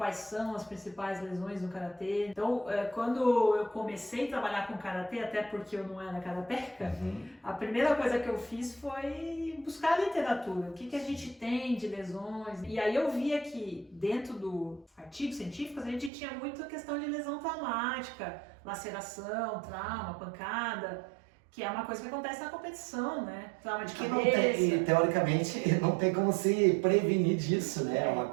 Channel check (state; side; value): drops out; left; at 16.1 s